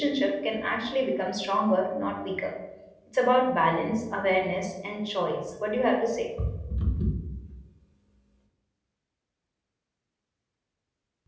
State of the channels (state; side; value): identical; both; correlation 1.00